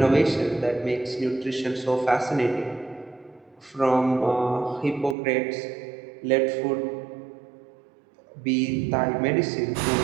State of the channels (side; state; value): left; drops out; at 5.2 s